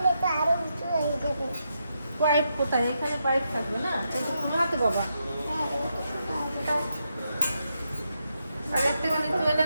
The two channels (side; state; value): both; inverted; correlation -0.83